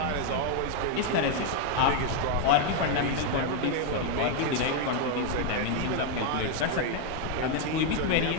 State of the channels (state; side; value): different; both; correlation 0.01